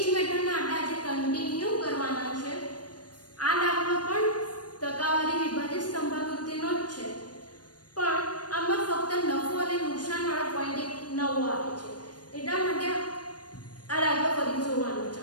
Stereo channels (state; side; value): late; right; 0.69 ms